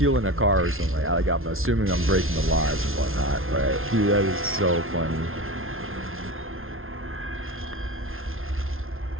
a car or something. Like I'm assuming I'm breaking the laws and whatnot, right? Dude, that is so funny.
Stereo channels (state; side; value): late; left; 0.61 ms